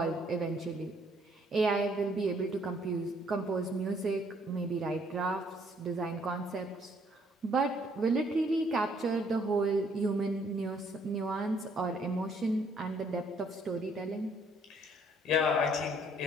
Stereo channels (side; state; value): both; normal; correlation 0.65